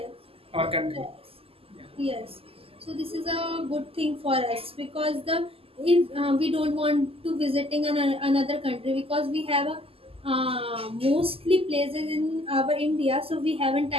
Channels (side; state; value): left; late; 0.28 ms